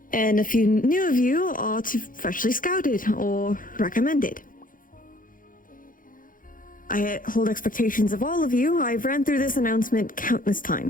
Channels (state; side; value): late; right; 0.40 ms